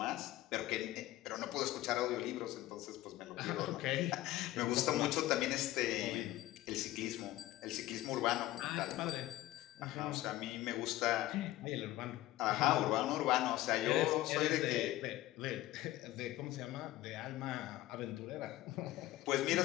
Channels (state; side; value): quieter; right; 16.1 dB